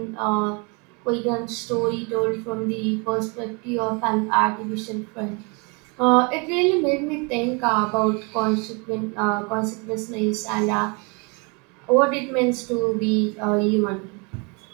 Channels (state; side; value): quieter; left; 31.9 dB